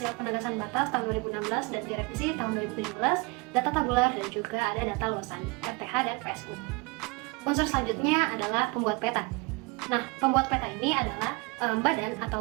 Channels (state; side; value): quieter; left; 28.2 dB